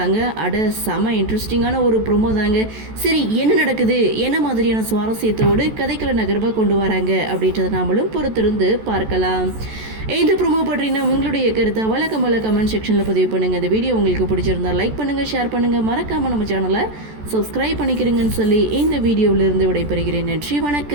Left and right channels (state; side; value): late; left; 14 ms